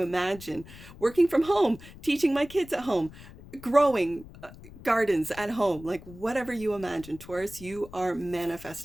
imagine? Working from home, teaching my kids at home, growing gardens at home, like whatever you imagine, Taurus, you are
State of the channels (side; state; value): left; noise; rumble, 18 dB below the sound